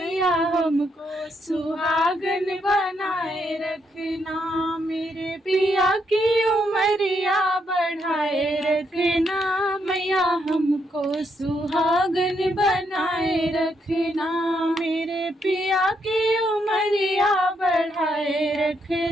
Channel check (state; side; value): normal; both; correlation 0.77